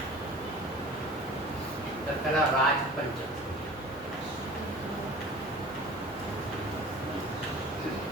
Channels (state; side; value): normal; both; correlation 0.41